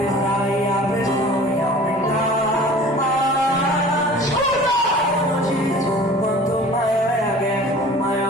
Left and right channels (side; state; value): both; normal; correlation 0.44